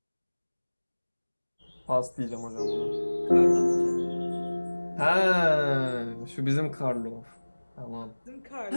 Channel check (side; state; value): both; inverted; correlation -1.00